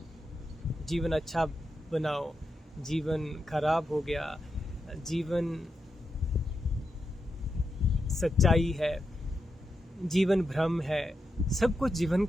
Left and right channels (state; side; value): normal; both; correlation 0.86